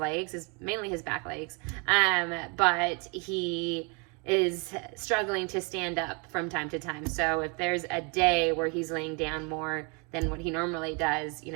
mainly his back legs, but he is struggling to stand up from time to time. So if there's a day where he's laying down more than what he normally does,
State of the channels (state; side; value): quieter; left; 33.1 dB